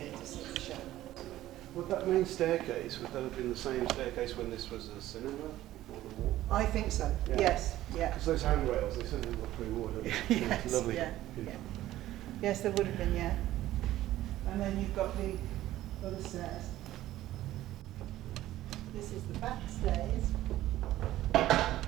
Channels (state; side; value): quieter; left; 14.6 dB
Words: to see the show. Would that main staircase, would that have been the same staircase when this was a cinema before the war? I think so. Yeah. Yes. Yeah. Because those handrails, they certainly look pre-war, don't they? Yes. It's lovely. Yeah. Yeah. Yes, there would have been. Yeah. And then you've got the other stairs. This is the back stairs.